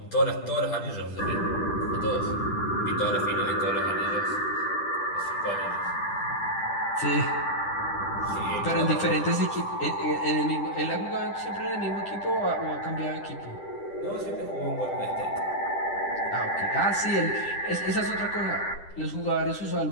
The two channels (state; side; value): late; right; 10 ms